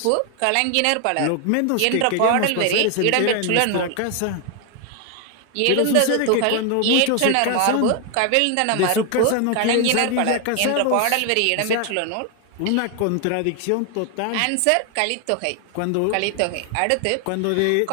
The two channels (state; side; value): different; both; correlation 0.01